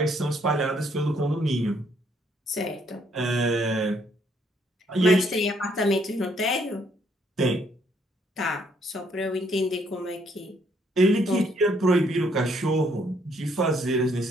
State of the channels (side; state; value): both; normal; correlation 0.68